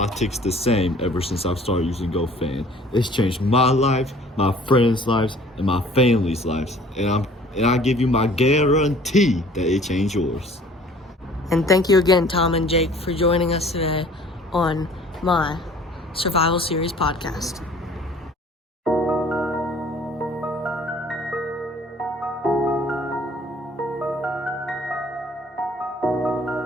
tickets the same ever since I've started using GoFan. It's changed my life, my friends' lives, and my family's lives. And I give you my guarantee that it changed yours. And thank you again, Tom and Jake, for joining us today on my Survival Series podcast.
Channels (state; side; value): normal; both; correlation 0.52